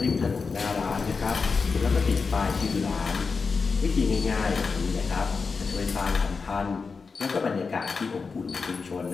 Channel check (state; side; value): quieter; right; 4.8 dB